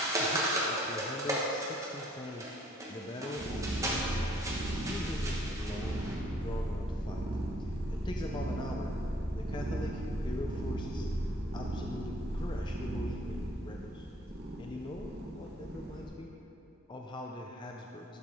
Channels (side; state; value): both; normal; correlation 0.60